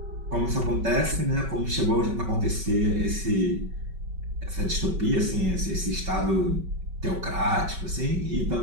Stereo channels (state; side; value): late; left; 5.3 ms